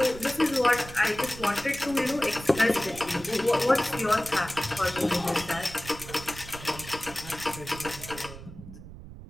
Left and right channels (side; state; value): right; noise; rumble, 14 dB below the sound